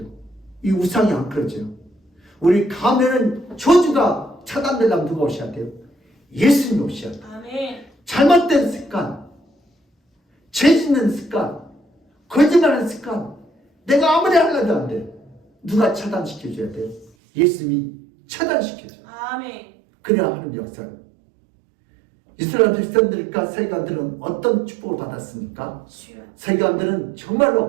이 우상이 안 끊어져요. 우리 가면은 저주가 차단되려면 누가 오셔야 돼요? 예수님이 오셔야 돼요. 아멘. 잘못된 습관, 죄 짓는 습관, 거짓말하는 습관, 내가 아무리 하려도 안 돼요. 누가 차단시켜줘야 돼요? 예수님이 차단시켜줘요. 아멘. 그래야 하는 역사를. 이스라엘 백성들과 세관들은 어떤 축복을 받았습니까? 주여. 세관들은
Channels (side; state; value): left; drops out; at 17.1 s